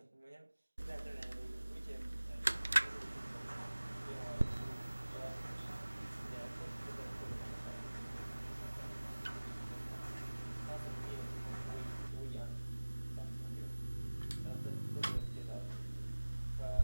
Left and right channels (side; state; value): both; inverted; correlation -1.00